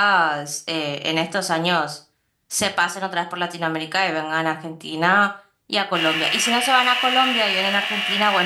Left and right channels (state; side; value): identical; both; correlation 1.00